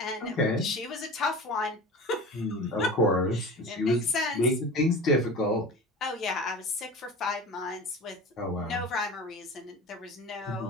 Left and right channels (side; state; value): both; normal; correlation 0.35